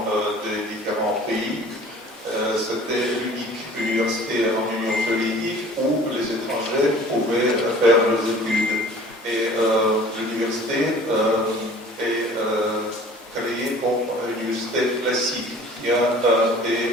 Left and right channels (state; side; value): normal; both; correlation 0.47